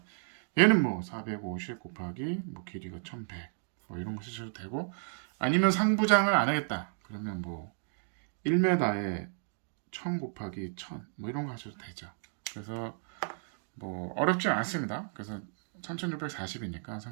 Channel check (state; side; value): silent; left; digital silence